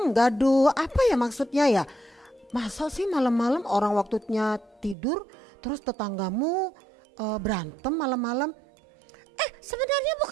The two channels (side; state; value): left; drops out; at 5.0 s